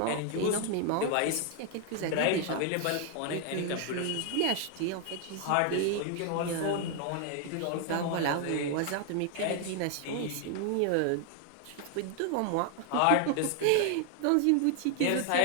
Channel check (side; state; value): both; different; correlation 0.00